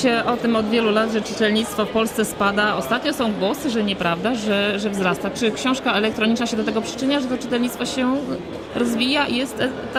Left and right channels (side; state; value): both; identical; correlation 1.00